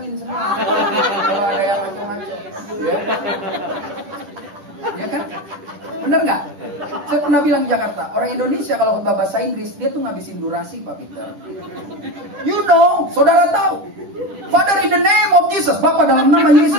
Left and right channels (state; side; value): late; left; 10 ms